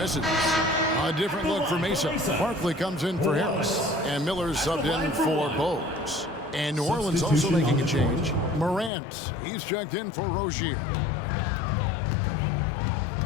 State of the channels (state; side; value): drops out; right; at 8.9 s